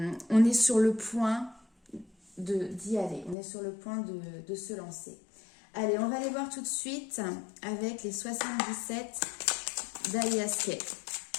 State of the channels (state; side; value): drops out; right; at 3.4 s